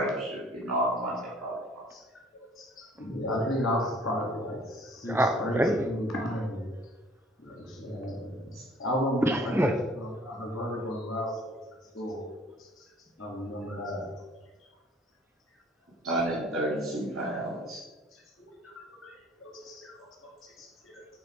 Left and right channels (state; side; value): normal; both; correlation 0.55